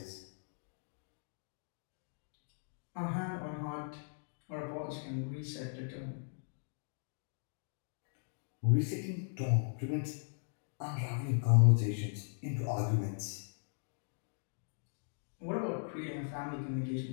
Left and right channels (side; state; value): right; silent; digital silence